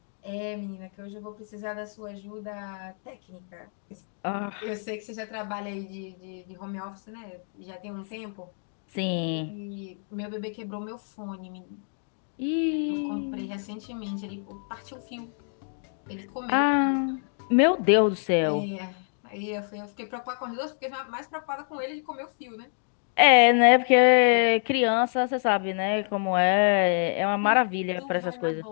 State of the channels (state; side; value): silent; right; 60 dB below the other